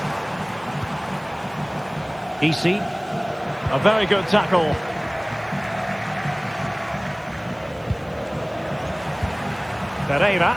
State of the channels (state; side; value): noise; right; hiss, 29 dB below the sound